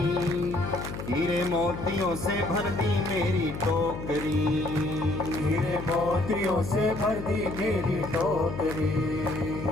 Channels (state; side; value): noise; left; hum, 8 dB below the sound